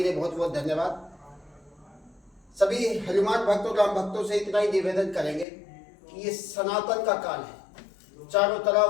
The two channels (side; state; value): right; drops out; at 5.5 s